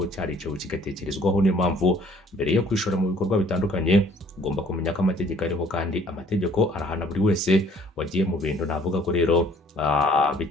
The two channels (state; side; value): normal; both; correlation 0.57